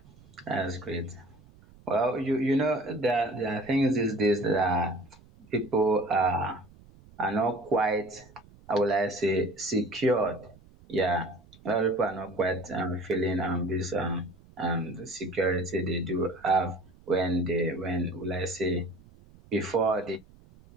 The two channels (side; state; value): right; noise; rumble, 25 dB below the sound